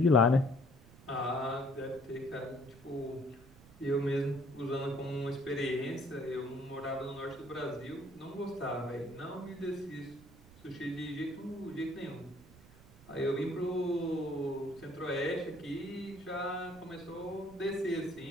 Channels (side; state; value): right; noise; rumble, 22 dB below the sound